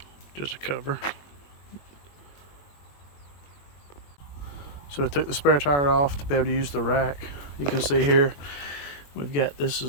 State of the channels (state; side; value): late; right; 21 ms